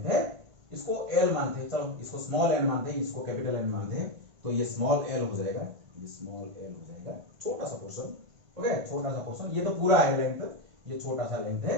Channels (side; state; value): left; late; 1.5 ms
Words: है, इसको l मानते हैं, चलो इसको स्मॉल n मानते हैं, इसको कैपिटल n मानते हैं, तो ये स्मॉल l हो जाएगा, ये स्मॉल l हो जाएगा, छोटा सा पोर्शन, ओके छोटा सा पोर्शन, ये तो पूरा है लेंथ, ये छोटा सा लेंथ